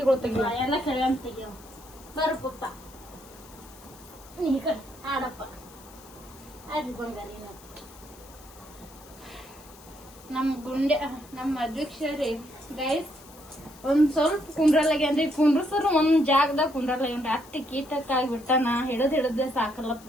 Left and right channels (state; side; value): noise; left; hiss, 22 dB below the sound